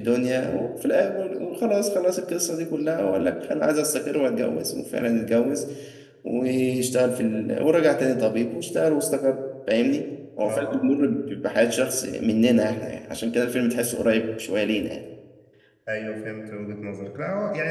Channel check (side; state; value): both; identical; correlation 1.00